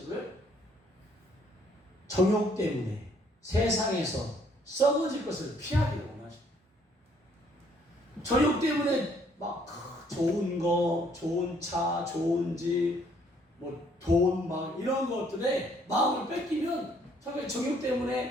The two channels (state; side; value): normal; both; correlation 0.65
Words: 거예요? 정욕 때문에 세상에서 썩어질 것을 피하기를 원하십니다. 정욕 때문에 막 좋은 거, 좋은 차, 좋은 집, 돈 막 이런 것들에 마음을 뺏기면 정욕